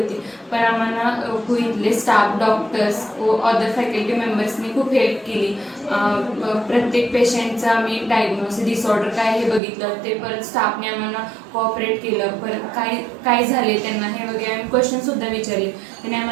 पण आम्हाला इथले स्टाफ, डॉक्टर्स व अदर फॅकल्टी मेंबर्सनी खूप हेल्प केली. प्रत्येक पेशंटचं आम्ही डायग्नोसिस, डिसऑर्डर काय हे बघितलं, ते परत स्टाफने आम्हाला कोऑपरेट केलं. परत काय झाले त्यांना हे वगैरे आम्ही क्वेश्चनसुद्धा विचारले. त्यांनी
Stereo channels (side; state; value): left; drops out; at 9.6 s